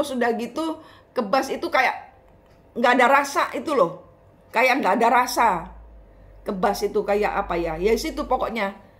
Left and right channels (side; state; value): both; identical; correlation 1.00